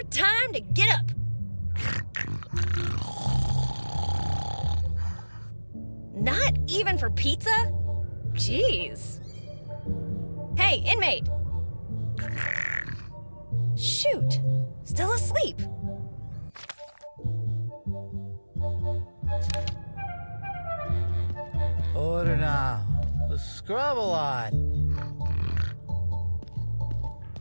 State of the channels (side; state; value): both; inverted; correlation -1.00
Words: time to get up! Not even for pizza? Jeez. Hey, inmate! Shoot, still asleep. Order now. The scrub a lot.